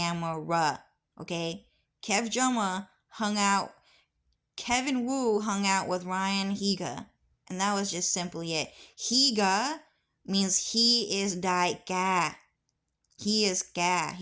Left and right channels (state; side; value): identical; both; correlation 1.00